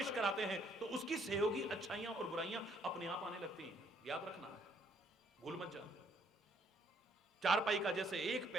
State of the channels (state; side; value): normal; both; correlation 0.66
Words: कराते हैं तो उसकी सहयोगी अच्छाइयां और बुराइयां अपने आप आने लगती हैं। याद रखना है, भूल मत जाना। चारपाई का जैसे एक